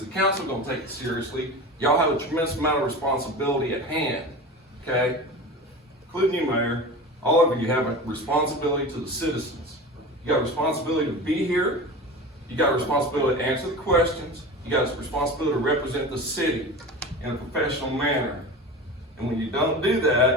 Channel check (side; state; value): both; normal; correlation 0.31